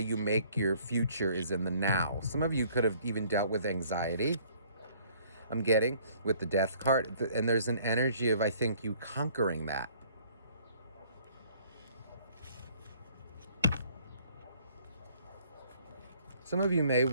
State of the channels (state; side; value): inverted; both; correlation -0.59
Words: make your future is in the now. Some of you could have even dealt with anxiety, I'm getting, with the Death card, and there's an energy of, I think, you conquering that. Some of you may